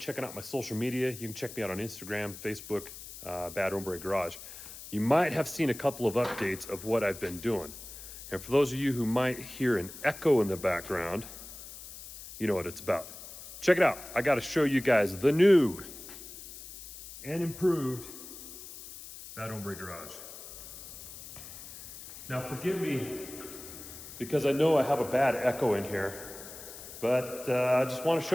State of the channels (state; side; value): noise; left; hiss, 14 dB below the sound